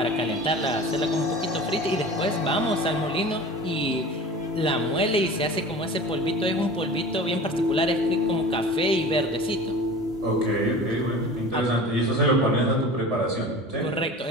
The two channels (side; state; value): both; normal; correlation 0.38